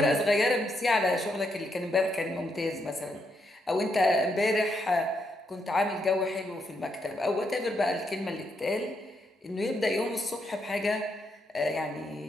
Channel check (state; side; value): normal; both; correlation 0.78